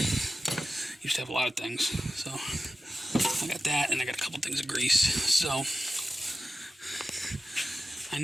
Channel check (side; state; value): both; normal; correlation 0.94